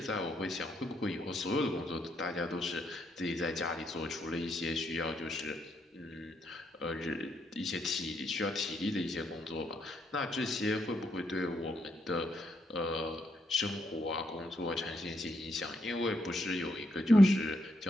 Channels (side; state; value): both; normal; correlation 0.77